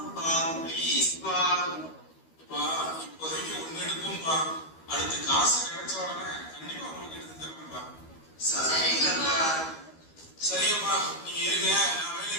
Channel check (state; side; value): late; right; 13 ms